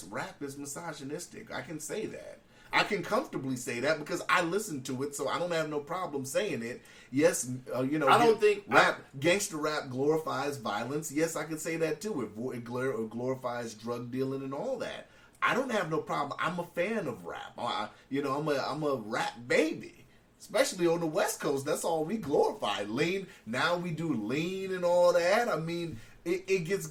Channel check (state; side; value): identical; both; correlation 1.00